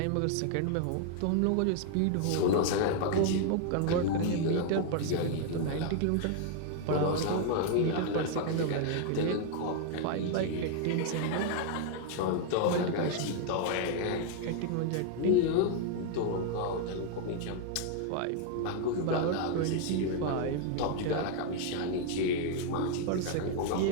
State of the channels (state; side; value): different; both; correlation 0.00